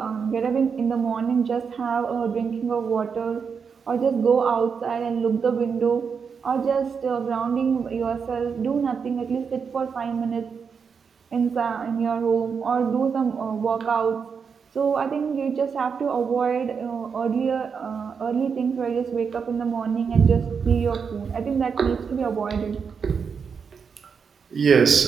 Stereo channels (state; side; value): quieter; left; 6.1 dB